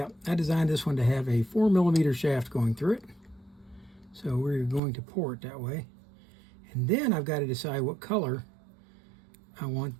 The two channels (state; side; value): drops out; left; at 4.8 s